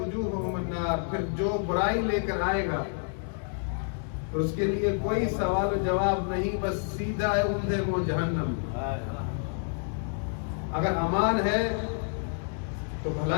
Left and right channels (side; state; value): right; silent; 59 dB below the other